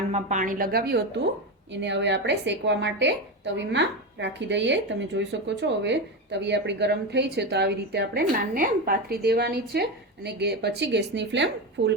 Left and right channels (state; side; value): normal; both; correlation 0.16